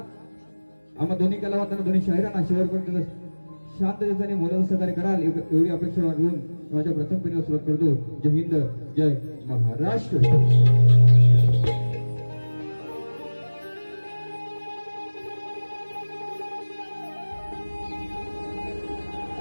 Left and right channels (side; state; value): both; inverted; correlation -1.00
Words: आम्हा दोन्ही कलावंतांना दोन्ही शाहिरांना शेवटपर्यंत शांततेने मोलाचं सहकार्य कराल एवढी अपेक्षा घेऊन माझ्या प्रथम पिढीला सुरुवात करतो जय हिंद जय Maharashtra